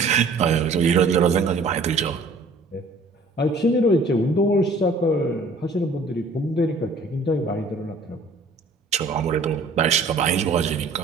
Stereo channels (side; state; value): left; quieter; 3.2 dB